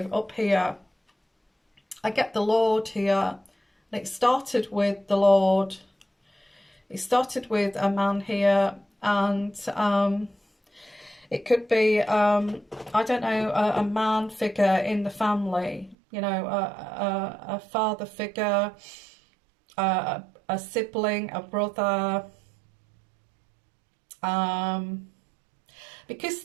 up here. I get the Lord here, and it started with the Lord. It started with a man here, and it could be, I don't know, a man figure in the family, you know, a father figure, a sibling, a brother, because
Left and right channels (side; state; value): left; drops out; at 16.0 s